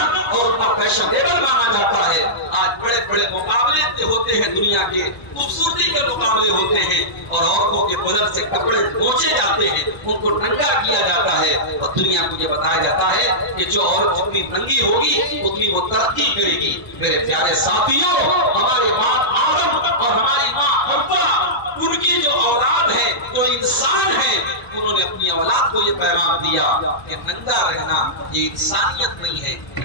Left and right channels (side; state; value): right; late; 1.0 ms